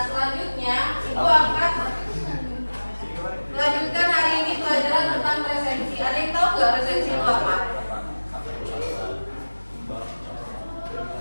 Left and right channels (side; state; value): both; inverted; correlation -1.00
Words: selanjutnya Ibu akan melanjutkan hari ini pelajaran tentang resensi. Ada yang tahu nggak resensi itu apa?